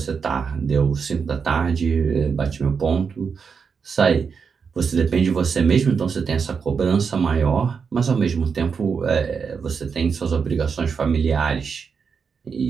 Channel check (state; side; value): quieter; left; 5.9 dB